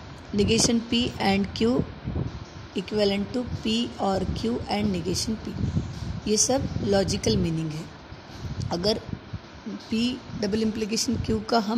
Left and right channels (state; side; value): identical; both; correlation 1.00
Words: Negation P and q equivalent to p और q and negation p. ये सब लॉजिकल मीनिंग है। अगर पी डबल इम्प्लीकेशन क्यू का